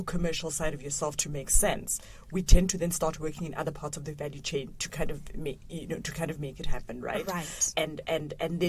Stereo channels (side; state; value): both; identical; correlation 1.00